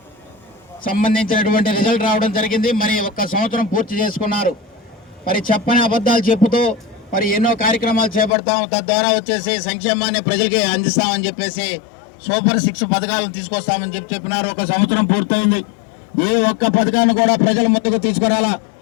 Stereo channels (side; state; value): right; drops out; at 8.3 s